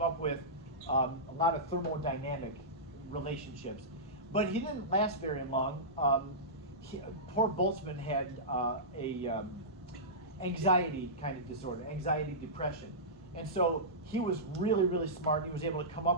up with a lot of thermodynamic relationships, but he didn't last very long. Poor Boltzmann had anxiety kind of disorder, anxiety depression. And so he was really smart. He was able to come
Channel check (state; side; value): normal; both; correlation -0.16